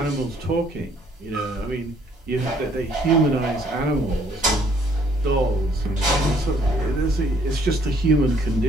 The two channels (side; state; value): both; normal; correlation 0.63